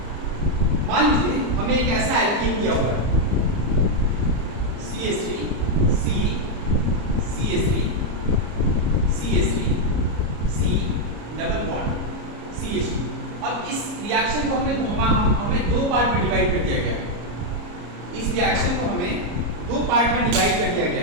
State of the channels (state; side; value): late; left; 34 ms